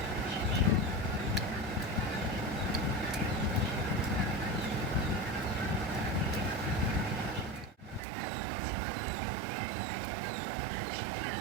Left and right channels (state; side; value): drops out; left; at 8.0 s